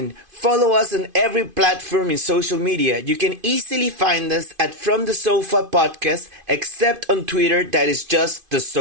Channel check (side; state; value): left; late; 2.5 ms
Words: Follow us on every platform in social media. You can easily find us at From the Sofa Podcast, except on Twitter, that is just the